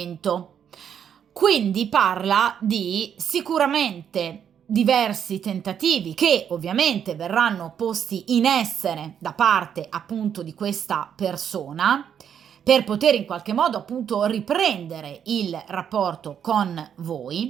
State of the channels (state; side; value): quieter; left; 8.5 dB